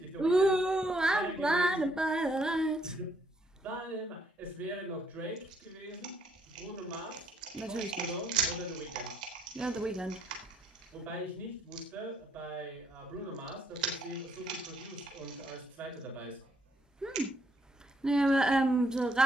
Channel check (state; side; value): normal; both; correlation 0.71